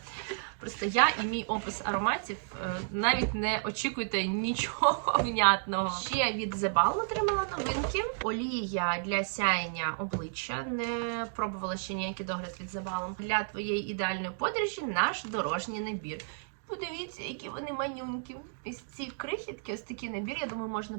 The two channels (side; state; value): left; silent; digital silence